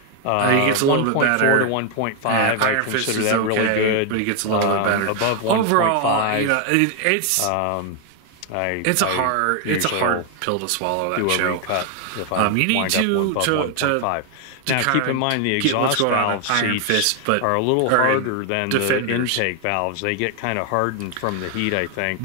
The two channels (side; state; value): both; different; correlation 0.00